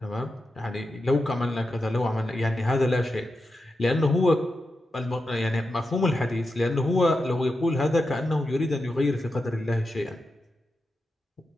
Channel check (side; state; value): both; normal; correlation 0.89